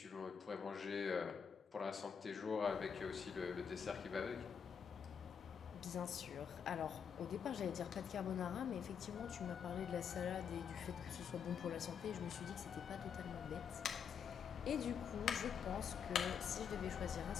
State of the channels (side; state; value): right; quieter; 7.1 dB